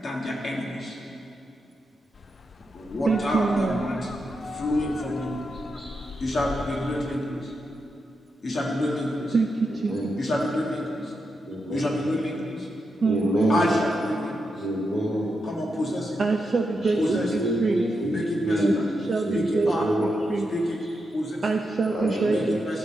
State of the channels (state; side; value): normal; both; correlation 0.85